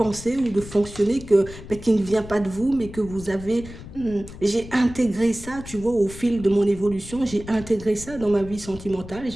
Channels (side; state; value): left; noise; rumble, 14 dB below the sound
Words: ou de fonctionner qui ne vient pas de vous, mais que vous avez... j'ai intégré ça, tu vois, au fil de mon évolution. J'ai intégré ça dans ma vie sentimentale.